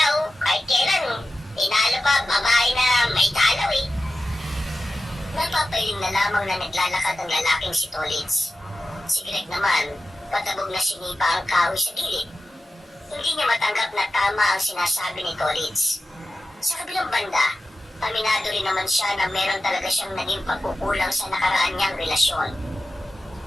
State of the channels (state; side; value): normal; both; correlation 0.93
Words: kahit kailan, tinalo pa babae na may talaw eh. Napapahiling na lamang na naglalakad ang lalaking si Tolitz. Si Greg naman, patabog na sinipa ang kahoy sa gilid. Hindi niya matanggap na tama ang sinasabi ni Tolitz. Sa kabilang banda, aminado rin naman siya na meron talaga siyang naging pagkukulang sa nakaraan niyang relasyon.